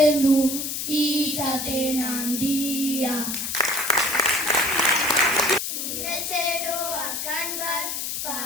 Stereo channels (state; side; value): noise; left; hiss, 3 dB below the sound